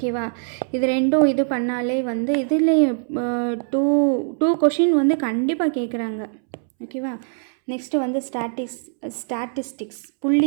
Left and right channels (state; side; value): silent; left; 64 dB below the other